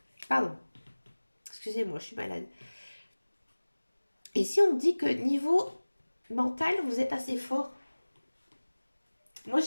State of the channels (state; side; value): inverted; both; correlation -1.00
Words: Pardon, excusez-moi, je suis malade. Et si on dit que niveau mental, vous êtes assez fort? Moi,